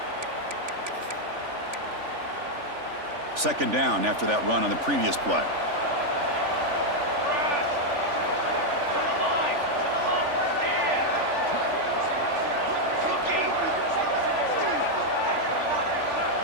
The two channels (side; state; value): left; late; 3.5 ms